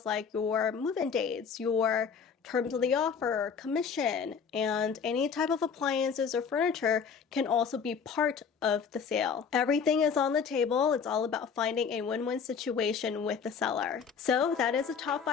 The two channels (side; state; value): right; quieter; 6.4 dB